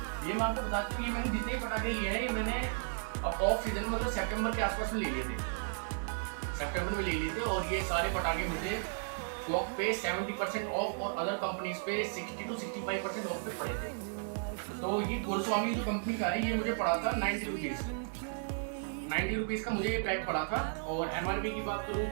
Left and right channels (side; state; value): left; silent; 55 dB below the other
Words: ये मैं आपको बताता हूँ, ये मैंने जितने पटाखे लिए हैं ये मैंने ऑफ सीजन में मतलब सितंबर के आसपास में ले लिए थे, सितंबर में ले लिए थे। और ये सारे पटाखे मुझे कॉक पे 70% ऑफ और अदर कंपनीज पे 60 to 65% ऑफ पे पड़े थे। तो ये गुरुस्वामी जो कंपनी का है ये मुझे पड़ा था 90 रुपीज़। 90 रुपीज़ का मुझे ये पैक पड़ा था। और एमआरपी की बात करूँ